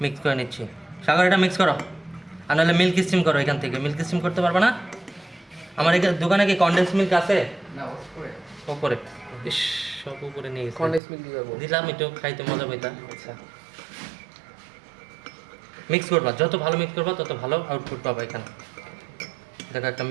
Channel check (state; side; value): drops out; left; at 11.0 s